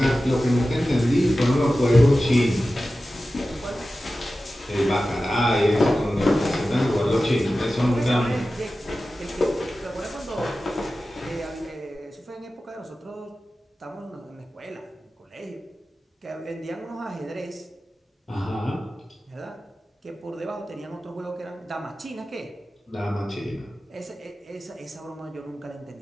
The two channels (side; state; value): both; normal; correlation 0.94